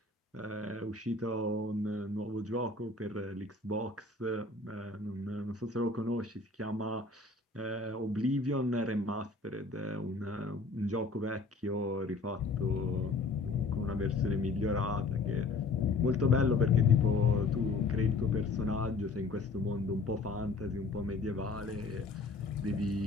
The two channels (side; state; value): right; quieter; 3.7 dB